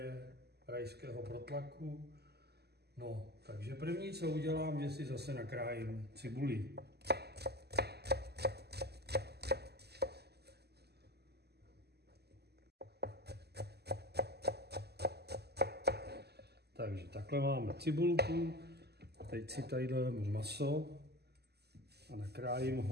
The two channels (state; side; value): late; left; 0.47 ms